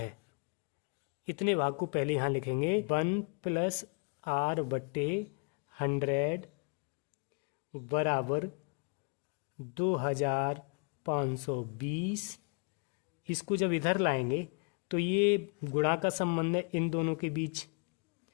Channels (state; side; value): quieter; right; 37.1 dB